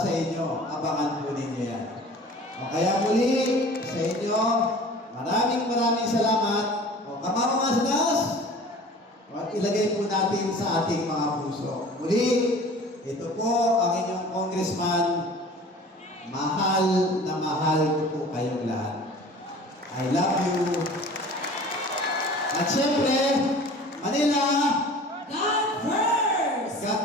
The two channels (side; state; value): both; normal; correlation 0.43